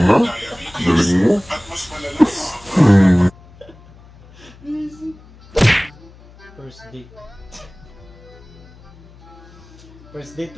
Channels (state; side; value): noise; left; hum, 23 dB below the sound